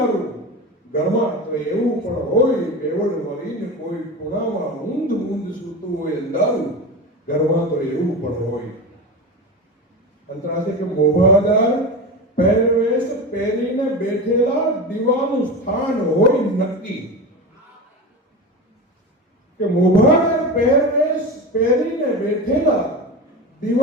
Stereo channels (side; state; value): both; normal; correlation 0.25